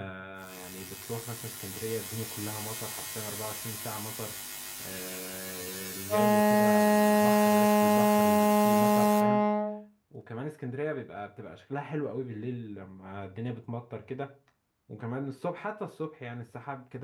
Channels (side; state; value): both; identical; correlation 1.00